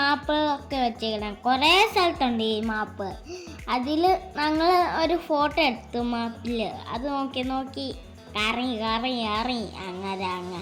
വെച്ചേക്കണം. കുറേ സ്ഥലത്തുണ്ട് ഈ മാപ്പ്. അതിൽ ഞങ്ങൾ ഒരു ഫോട്ടോ എടുത്തു മാപ്പിൽ. അത് നോക്കി കറങ്ങി അങ്ങനെ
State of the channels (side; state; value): both; identical; correlation 1.00